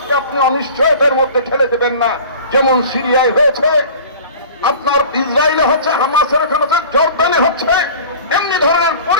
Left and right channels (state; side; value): inverted; both; correlation -0.41